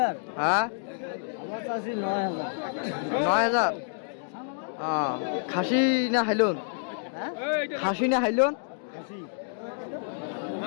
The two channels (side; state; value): right; silent; digital silence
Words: হ্যাঁ 9,000 খাসি না হাইলন খাসি না হাইলন